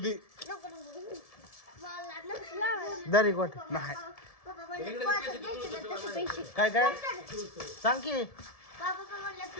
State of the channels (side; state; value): right; late; 1.7 ms